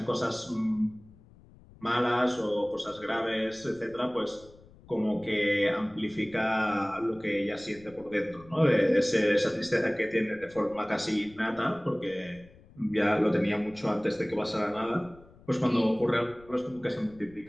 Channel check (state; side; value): noise; left; rumble, 24 dB below the sound